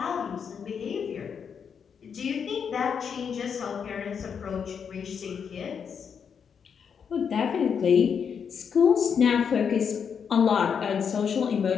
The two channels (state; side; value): quieter; right; 6.9 dB